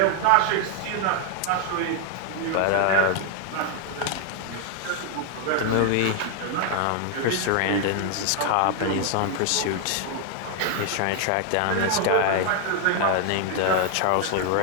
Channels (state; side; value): different; both; correlation 0.00